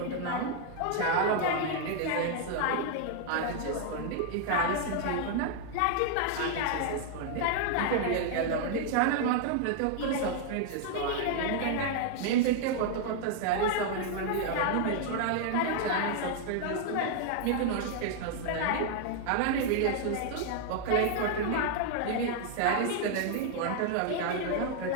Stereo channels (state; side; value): different; both; correlation 0.00